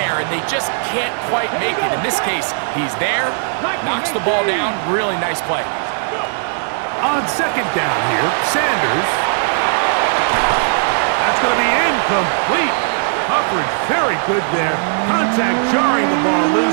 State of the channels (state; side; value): silent; left; digital silence